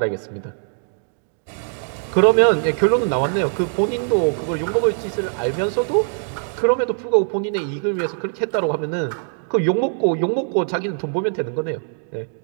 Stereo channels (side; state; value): left; silent; digital silence